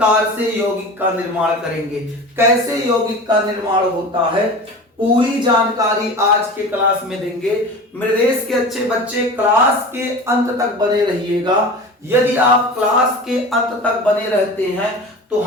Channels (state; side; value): normal; both; correlation 0.34